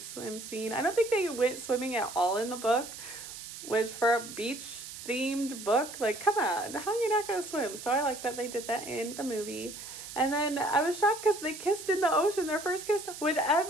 swim scene. I don't think they went swimming at all in the book, which for a beach themed book, like, come on, how are you not going to swim? So I like that they did that in the movie. And then I was shocked because they kissed in the ocean, their first kiss with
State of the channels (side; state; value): right; noise; hiss, 11 dB below the sound